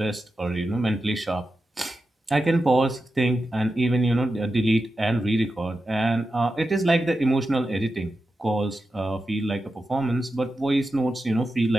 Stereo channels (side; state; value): both; normal; correlation 0.90